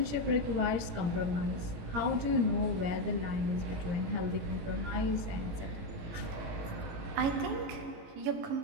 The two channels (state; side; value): late; left; 18 ms